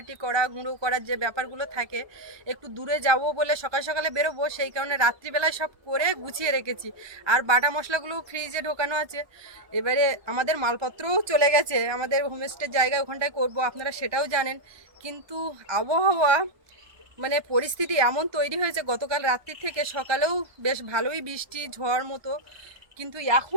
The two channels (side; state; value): left; late; 1.1 ms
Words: করা, গুঁড়ো করার যে ব্যাপারগুলো থাকে, একটু দূরে যাব বলে সকাল সকালে বেরোবো, সেই কারণে রাত্রিবেলায় সব করে গুছিয়ে রেখেছি। আর বাটা মশলাগুলোও ফ্রিজে ঢোকানো আছে। এবারে আমাদের মালপত্রও চলে গেছে, আমাদের হোমস্টের জায়গায় ওখানটায় করব, আপনারা সেটাও জানেন। কিন্তু আবহাওয়া মানে পরিস্থিতি এমন তৈরি হয়েছে, গতকাল রাত্রি থেকে সকালেও বেশ ভালোই বৃষ্টি, ঝড় মতো, কিন্তু